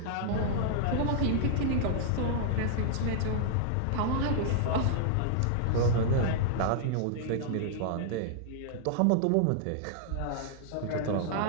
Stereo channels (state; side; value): different; both; correlation -0.01